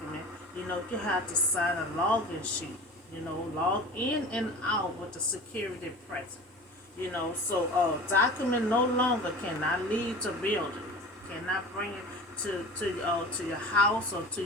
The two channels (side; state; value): both; normal; correlation 0.37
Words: you have to sign a login sheet. Log in and out with the security present. So document no longer cannot leave the building, cannot bring it to your house or